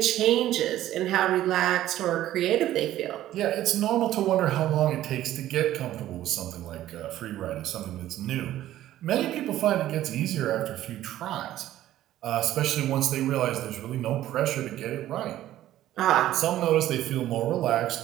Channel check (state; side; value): quieter; left; 13.5 dB